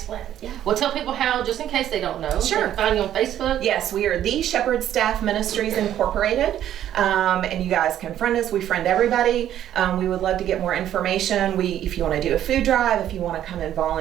Yeah. Well, tell people how, just in case they don't know. Sure. They can find you on Facebook. Yes, we are the Shepherd Staff Ministries Incorporated, and you guys can friend us. We friend everybody. We would love to get more information. If you want to do a food drive, if you want to come and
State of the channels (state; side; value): quieter; left; 11.3 dB